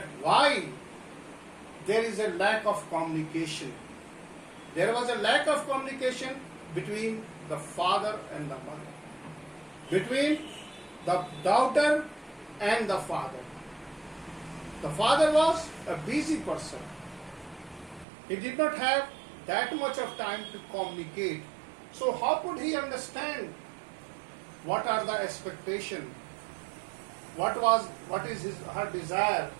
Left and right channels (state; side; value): drops out; left; at 18.1 s